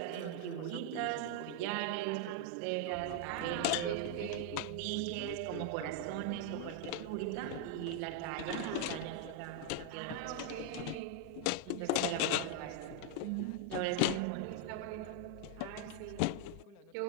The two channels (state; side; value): different; both; correlation 0.00